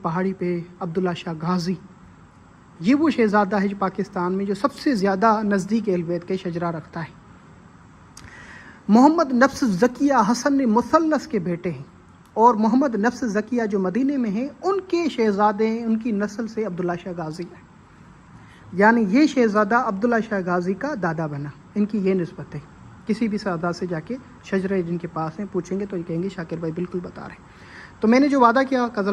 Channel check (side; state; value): both; identical; correlation 1.00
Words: پہ عبداللہ شاہ غازی، یہ وہ شہزادہ ہے جو پاکستان میں جو سب سے زیادہ نزدیک اہل بیت کے شجرہ رکھتا ہے. محمد نفس زکیہ حسن مثلث کے بیٹے ہیں، اور محمد نفس زکیہ جو مدینے میں ہیں ان کے شہزادے ہیں، ان کی نسل سے عبداللہ شاہ غازی ہے. یعنی یہ شہزادہ عبداللہ شاہ غازی کا دادا بنا. ان کی یہ نسبت ہے. کسی بھی سادہ سے جا کے شجرے جن کے پاس ہیں پوچھیں گے تو یہ کہیں گے شاکر بھائی بالکل بتا رہے ہیں. تو میں نے جو وعدہ کیا